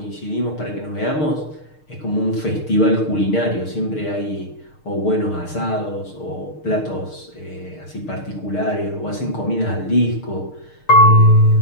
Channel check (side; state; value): right; late; 6.5 ms